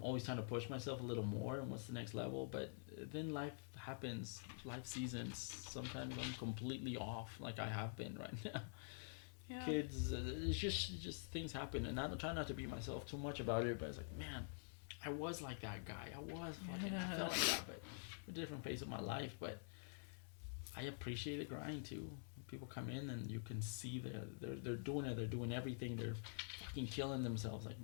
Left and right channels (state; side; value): silent; right; digital silence